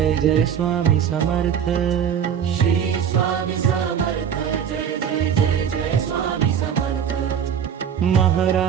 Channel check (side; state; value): left; quieter; 8.3 dB